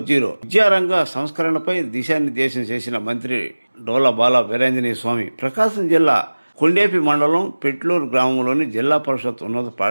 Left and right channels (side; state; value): both; inverted; correlation -1.00